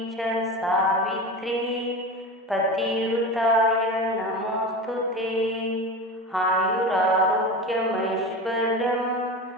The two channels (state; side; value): normal; both; correlation 0.27